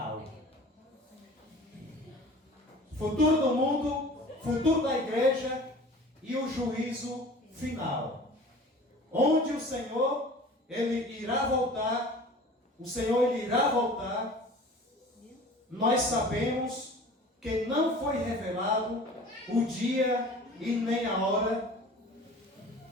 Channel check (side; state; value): both; normal; correlation 0.43